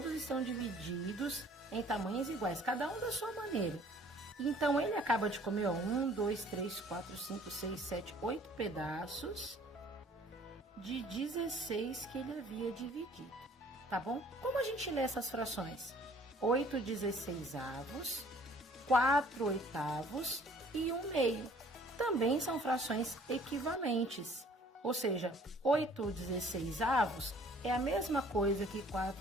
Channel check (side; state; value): both; normal; correlation 0.55